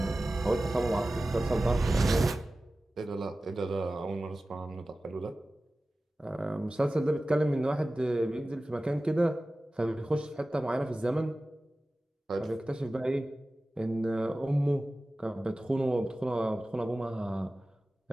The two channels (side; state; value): both; normal; correlation 0.96